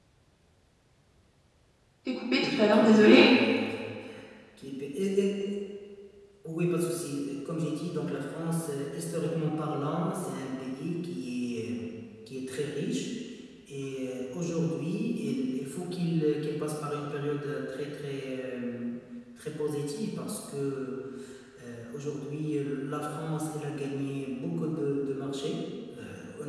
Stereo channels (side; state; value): both; identical; correlation 1.00